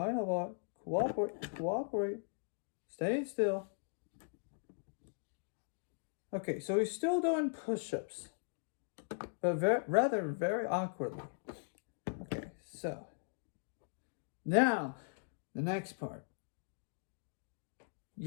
cooperate. Stay still. Okay, so he's still doing push-ups, but very awkwardly. Okay, so now the next part.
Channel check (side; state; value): right; silent; digital silence